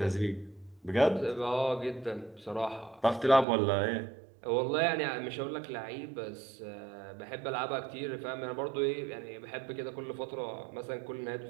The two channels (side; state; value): left; drops out; at 3.5 s